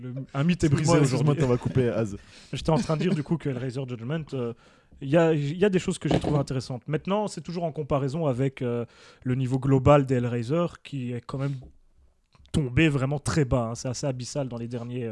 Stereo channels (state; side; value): identical; both; correlation 1.00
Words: Un mythe est brisé Excuse-moi, aujourd'hui. t'en vas couper Az. J'étais en train de dire du coup que Hellraiser Judgment, il y a des choses que j'ai trouvées intéressantes. Maintenant, c'est toujours en comparaison avec le niveau global des Hellraiser qui est quand même tombé vraiment très bas. Hein. C'est assez abyssal dans les derniers,